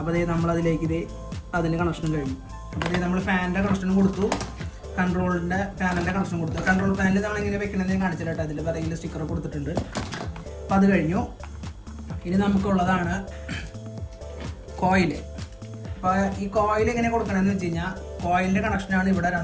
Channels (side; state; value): both; identical; correlation 1.00